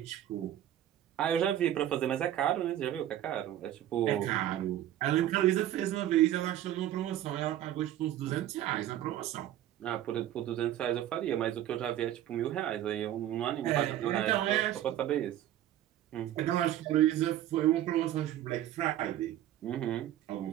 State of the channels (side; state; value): left; quieter; 12.4 dB